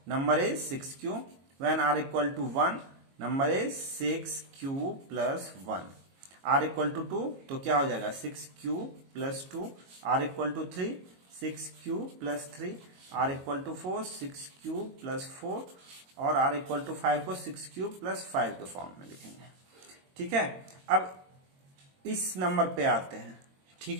number is 6q, when r equal to 1 number is 6q plus 1, r equal to 2 तो क्या हो जाएगा 6q plus 2, r equal to 3 6q plus 3, r equal to 4 6q plus 4 और r equal to 5 को 6q plus 5 के form में लिखेंगे, ठीक है। अब इस नंबर पे आते हैं, ठीक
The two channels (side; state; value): left; late; 22 ms